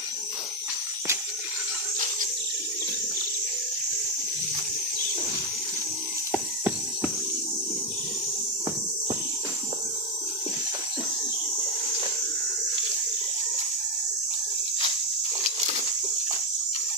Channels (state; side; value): normal; both; correlation 0.06